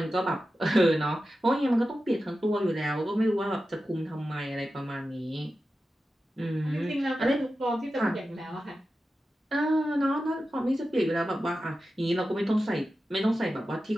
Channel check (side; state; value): both; normal; correlation 0.92